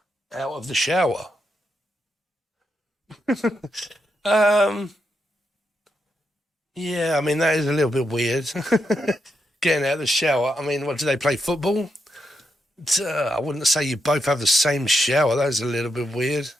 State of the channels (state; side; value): normal; both; correlation 0.83